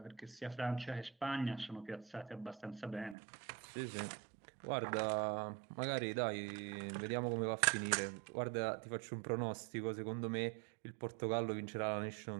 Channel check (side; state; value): left; drops out; at 3.2 s